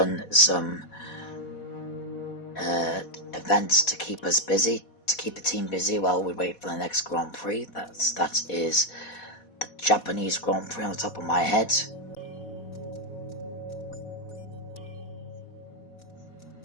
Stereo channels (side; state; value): right; late; 4.1 ms